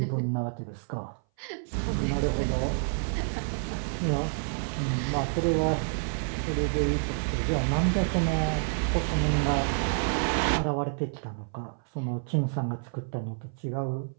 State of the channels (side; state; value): left; silent; 58 dB below the other